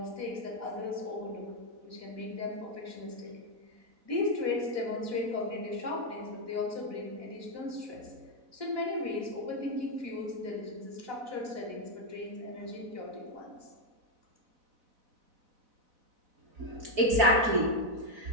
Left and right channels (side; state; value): left; late; 4.0 ms